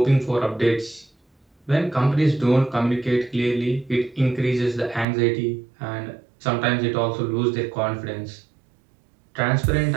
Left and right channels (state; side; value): drops out; left; at 5.1 s